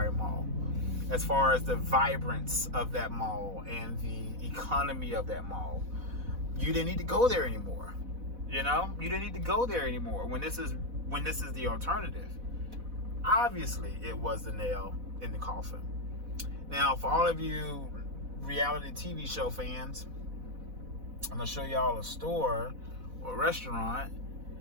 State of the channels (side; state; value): left; late; 4.1 ms